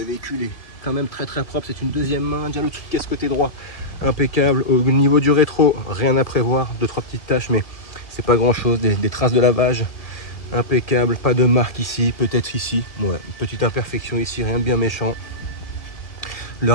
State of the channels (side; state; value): right; late; 1.8 ms